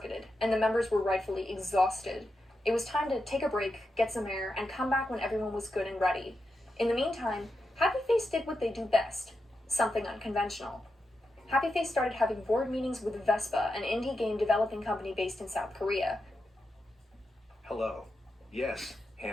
and the members were rightfully exhausted. It was time to take a break, get some air, and come back when everyone was good and ready. In the meantime, Happy Face did what they do best, something unconventional. Happy Face started having board meetings with Vespa, an indie game developing company based in South Korea. Hello. Yes,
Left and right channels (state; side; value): normal; both; correlation 0.88